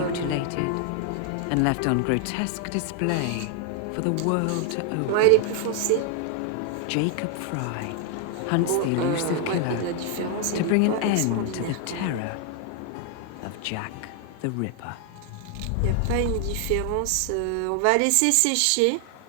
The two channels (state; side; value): different; both; correlation 0.00